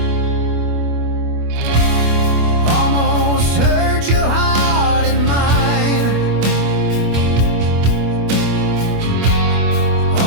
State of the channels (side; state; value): left; late; 25 ms